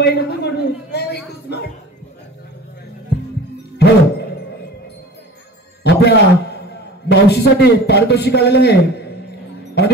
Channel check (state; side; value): normal; both; correlation 0.40